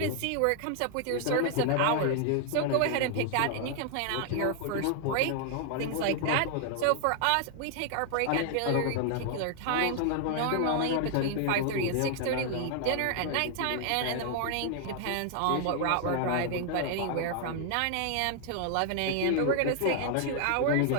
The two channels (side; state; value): both; different; correlation 0.00